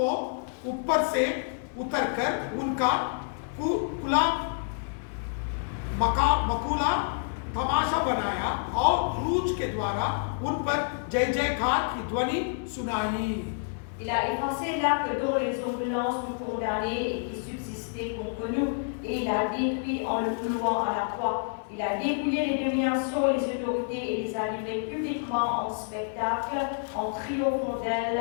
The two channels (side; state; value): right; silent; digital silence